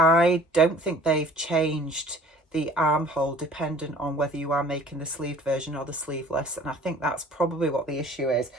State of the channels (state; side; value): normal; both; correlation 0.49